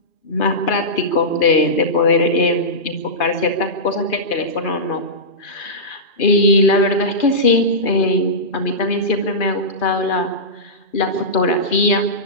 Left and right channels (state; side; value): late; right; 2.4 ms